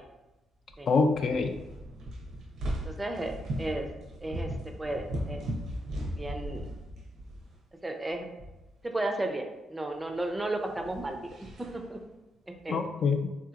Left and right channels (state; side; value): normal; both; correlation 0.81